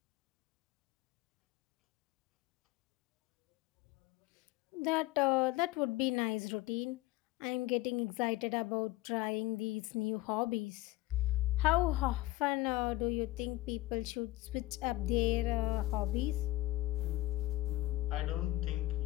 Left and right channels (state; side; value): quieter; right; 18.3 dB